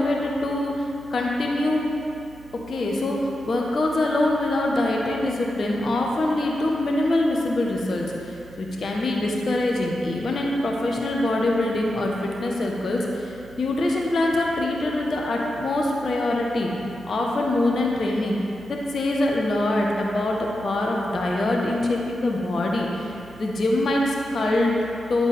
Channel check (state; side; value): noise; right; hum, 22 dB below the sound